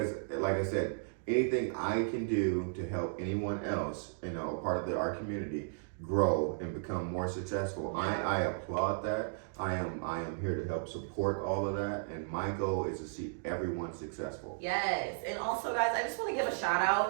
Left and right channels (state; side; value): silent; left; digital silence